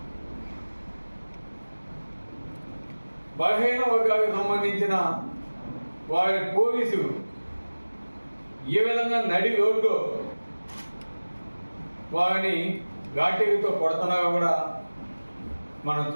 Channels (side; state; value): both; inverted; correlation -1.00